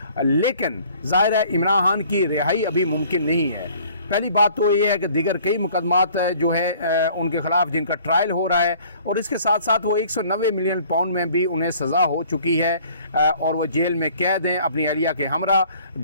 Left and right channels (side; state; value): both; inverted; correlation -0.54